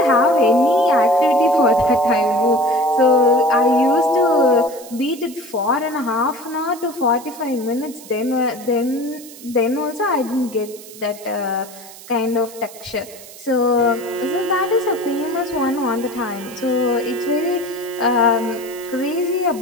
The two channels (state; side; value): noise; right; hiss, 18 dB below the sound